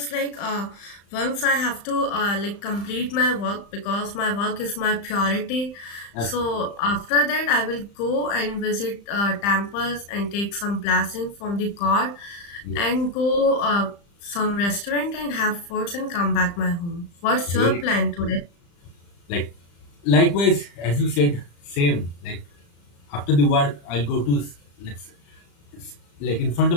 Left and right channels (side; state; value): right; late; 35 ms